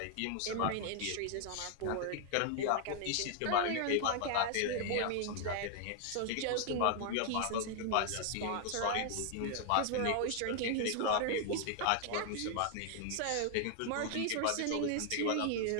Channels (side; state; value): both; different; correlation 0.00